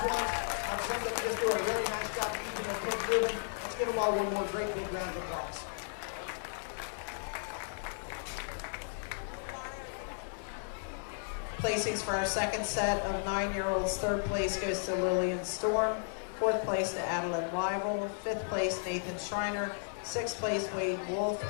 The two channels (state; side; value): silent; right; 55 dB below the other